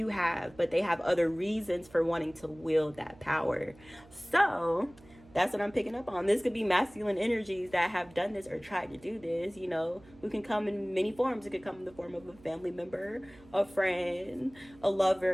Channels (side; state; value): right; noise; hum, 24 dB below the sound